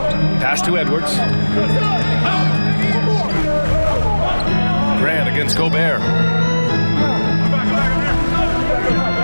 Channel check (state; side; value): inverted; both; correlation -1.00